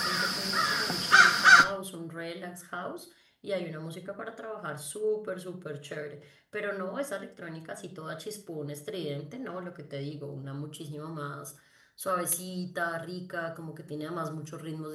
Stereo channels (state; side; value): identical; both; correlation 1.00